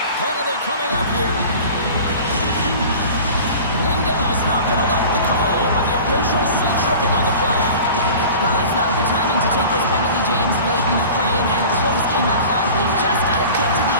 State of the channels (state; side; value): inverted; both; correlation -0.40